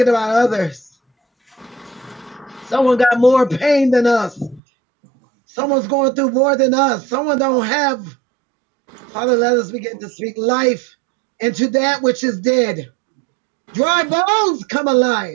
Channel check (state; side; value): drops out; left; at 4.6 s